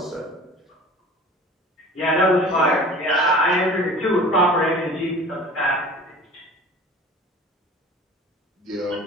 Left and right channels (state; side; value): normal; both; correlation 0.42